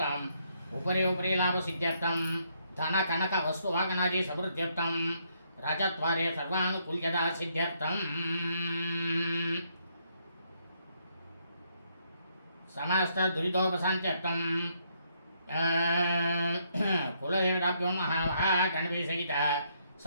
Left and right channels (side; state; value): both; inverted; correlation -0.73